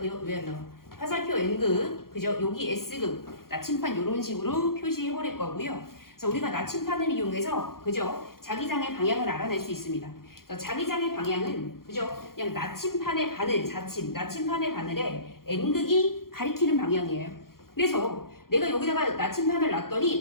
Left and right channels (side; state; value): right; late; 0.92 ms